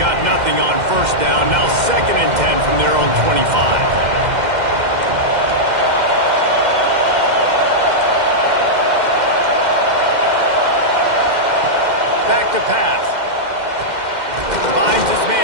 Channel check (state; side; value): late; left; 2.1 ms